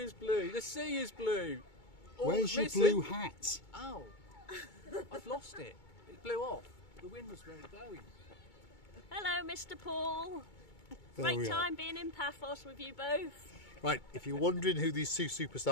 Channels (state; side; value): late; right; 2.2 ms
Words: blue, the sea is blue. All Where's your missing- blue hat? Oh, I've lost it. It blew off. The wind was very blowing. Hello, Mr. Paul. There Great we are. time being in Paphos with you both. Right, if you're wondering who these two